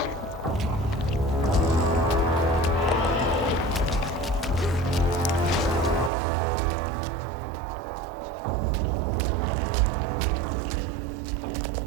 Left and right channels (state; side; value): drops out; left; at 6.1 s